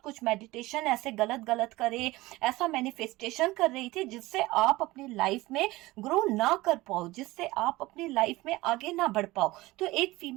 कुछ मेडिटेशन ऐसे गलत गलत करे, ऐसा मैनिफेस्टेशन कर रही थी जिससे आप आप अपनी लाइफ में ग्रो ना कर पाओ, जिससे आप अपनी लाइफ में आगे ना बढ़ पाओ। तो एक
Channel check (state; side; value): quieter; left; 19.5 dB